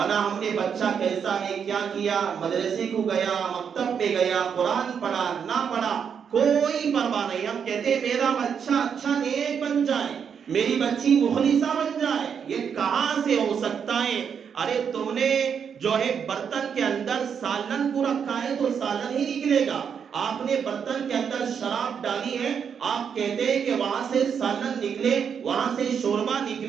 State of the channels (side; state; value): left; quieter; 7.2 dB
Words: نہ ہم نے بچہ کیسا ہے، کیا کیا، مدرسے کو گیا، مکتب پہ گیا، قرآن پڑھا نہ پڑھا، کوئی پرواہ نہیں، ہم کہتے میرا بچہ اچھا نیک بن جائے، میری بچی مخلصہ بن جائے، یہ کہاں سے ہو سکتا ہے؟ ارے تم نے جو ہے برتن کے اندر سالن کو رکھا ہے تو سالن ہی نکلے گا، آپ نے برتن کے اندر شراب ڈالی ہے، آپ کہتے ہیں کہ وہاں سے سالن نکلے، وہاں سے شوربا